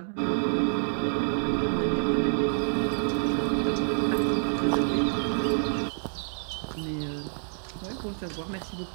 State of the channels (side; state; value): left; silent; digital silence